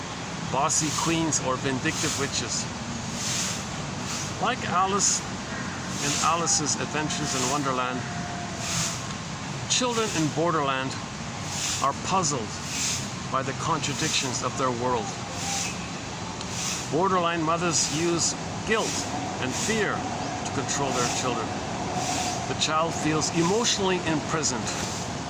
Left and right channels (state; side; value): identical; both; correlation 1.00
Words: bossy queens, or vindictive witches. Like Alice in Alice's Adventures in Wonderland, children in Borderland are puzzled by the contradictions of their world. Borderline mothers use guilt and fear to control their children. The child feels emotionally imprisoned,